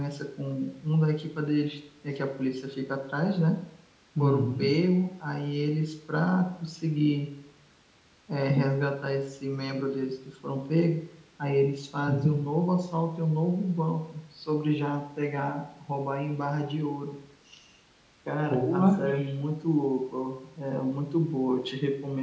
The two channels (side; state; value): both; identical; correlation 1.00